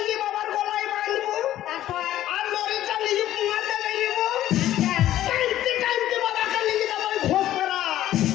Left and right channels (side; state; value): right; quieter; 13.1 dB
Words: বাবার গলায় বাঁধবো, তারপর আর লরিটা নিয়ে পুঙাতে বেরিয়েবো। টাইমতে টাইমতে বাবাকে নিয়ে যাবো ওই ঘোষ করা।